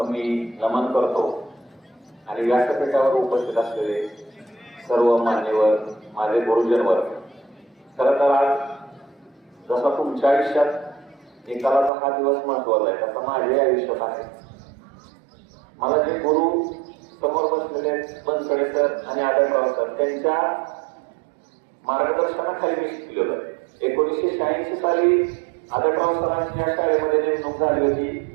मी नमन करतो आणि व्यासपीठावर उपस्थित असलेले सर्व मान्यवर, माझे गुरुजन वर्ग. खरं तर आज जसा तुमच्या आयुष्यात निकालाचा हा दिवस महत्वाचा आहे, तसा माझ्या आयुष्यात आहे. मला जे गुरु समोर बसलेले बनसडे सर आणि आदरराव सर त्यांच्या मार्गदर्शनाखाली मी शिकलेलो. 1986 साली आदरराव सरांची या शाळेमध्ये नेमणूक झाली होती.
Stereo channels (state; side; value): drops out; left; at 11.9 s